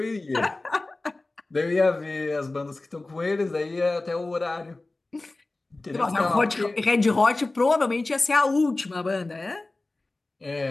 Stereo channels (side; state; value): right; quieter; 3.1 dB